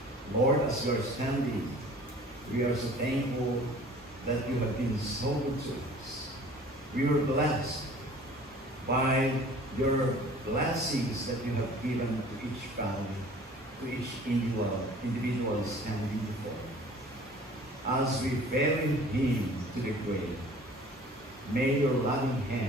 Lord, as we are standing, we are so thankful that you have been so good to us. We were blessed by your blessings that you have given to each family, to each individual standing before you. As we bury him to the grave, may your loving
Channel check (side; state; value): both; normal; correlation 0.48